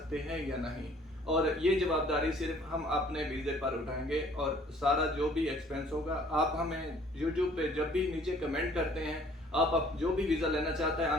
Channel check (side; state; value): both; normal; correlation 0.56